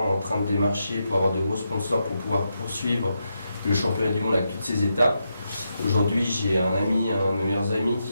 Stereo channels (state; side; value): inverted; both; correlation -0.85